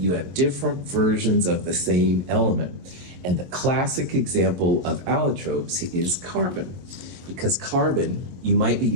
have different versions of the same element. And the classic example of allotropes is carbon. Because carbon, you might be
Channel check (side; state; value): left; late; 22 ms